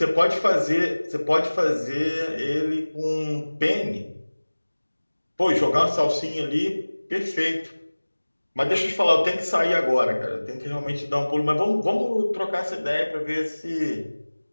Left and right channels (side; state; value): both; inverted; correlation -1.00